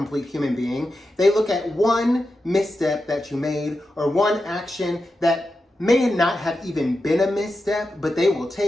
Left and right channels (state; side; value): normal; both; correlation 0.90